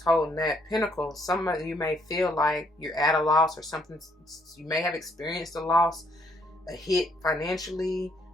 that pentacle. Some of you may feel like you're at a loss or something. You may have experienced a loss, a hit financially,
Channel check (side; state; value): both; normal; correlation 0.69